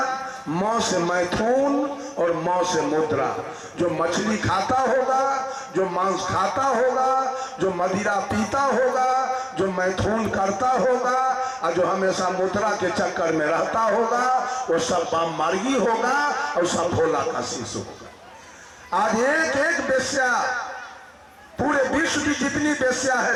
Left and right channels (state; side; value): identical; both; correlation 1.00